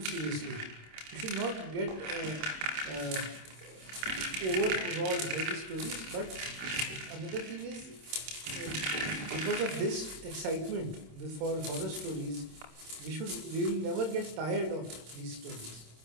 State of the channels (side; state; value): left; late; 26 ms